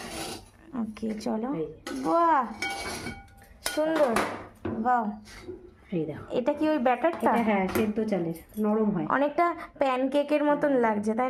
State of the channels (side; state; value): both; identical; correlation 1.00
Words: ওকে চলো। এই যে। বাহ, সুন্দর। বাহ, এই দেখো, এটা কি ওই ব্যাটারটা? এটা হ্যাঁ সেদ্ধ চালের, নরম হয়। অনেকটা প্যানকেকের মতন লাগছে, তাই